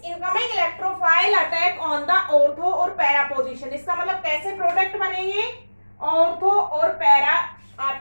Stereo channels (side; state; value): both; inverted; correlation -1.00